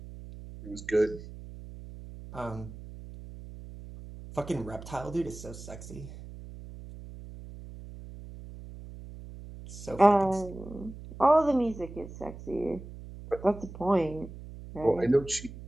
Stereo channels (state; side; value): noise; right; hum, 14 dB below the sound